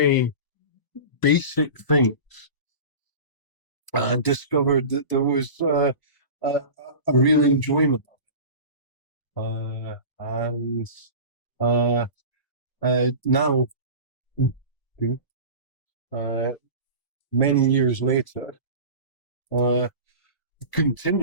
basic things, discovered that there was a real enjoyment. And now, many years later,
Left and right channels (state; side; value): late; right; 1.0 ms